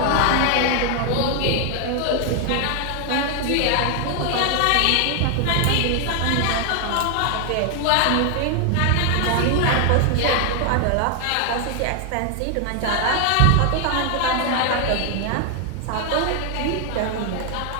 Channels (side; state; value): both; different; correlation 0.00